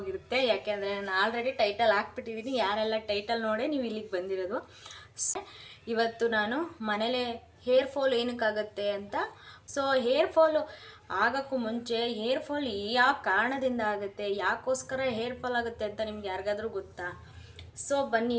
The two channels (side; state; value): both; identical; correlation 1.00